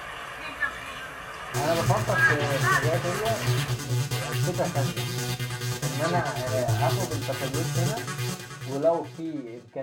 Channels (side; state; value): both; identical; correlation 1.00